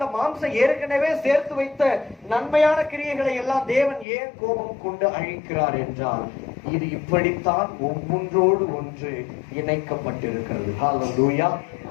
மாம்சம் ஏற்கனவே சேர்த்து வைத்த நன்மையான கிரியைகளை எல்லாம் தேவன் ஏன் கோபம் கொண்டு அழிக்கிறார் என்றால், இது இப்படித்தான் ஒவ்வொன்றோடு ஒன்று இணைக்கப்பட்டிருக்கிறது. ஹல்லேலூயா.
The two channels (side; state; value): right; drops out; at 4.0 s